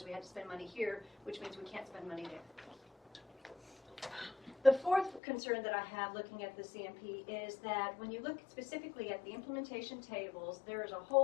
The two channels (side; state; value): right; drops out; at 5.2 s